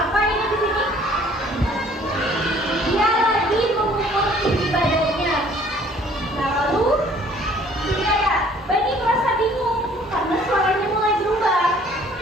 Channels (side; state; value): both; normal; correlation 0.56